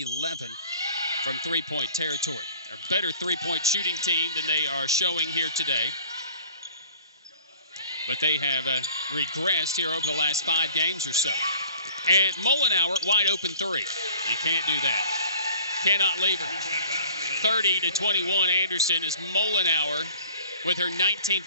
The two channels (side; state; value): both; inverted; correlation -0.49